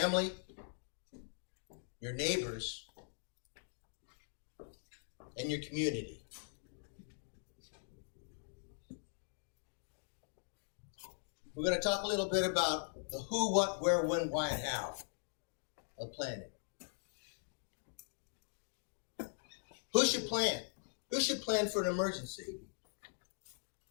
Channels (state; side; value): silent; right; digital silence